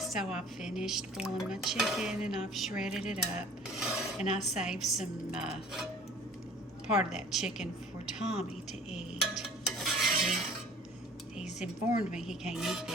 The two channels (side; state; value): both; normal; correlation 0.49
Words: I've finished boiling my chicken and I've shredded it up, and I saved some part of that chicken for Tommy to eat. He's informed me he can't eat